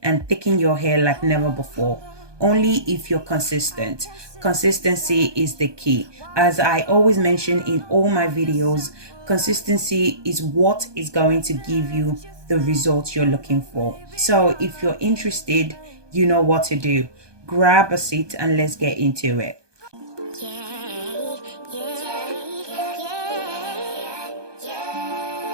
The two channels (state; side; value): late; left; 1.2 ms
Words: and thicken your hair like never before. Only if you're consistent. Consistency is the key. As I always mention in all my videos, consistency is what is going to give you the results you're looking for. So if you're interested, you know what to do. Grab a seat and let's get into it.